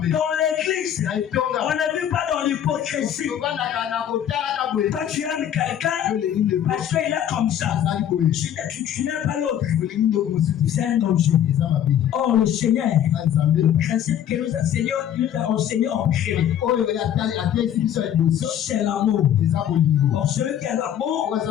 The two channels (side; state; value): right; quieter; 10.2 dB